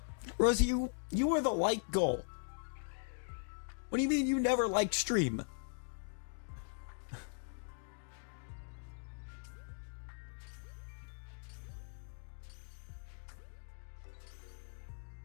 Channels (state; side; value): silent; right; digital silence